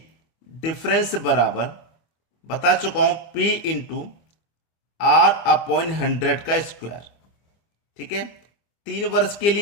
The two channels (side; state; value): right; late; 25 ms